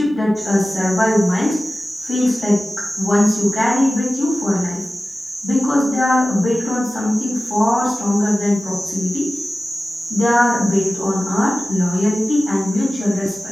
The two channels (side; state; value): both; normal; correlation 0.96